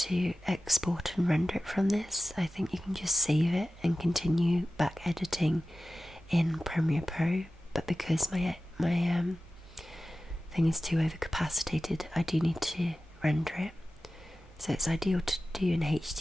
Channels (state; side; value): normal; both; correlation 0.95